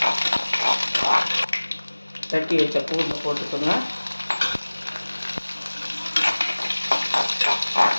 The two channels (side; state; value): both; inverted; correlation -1.00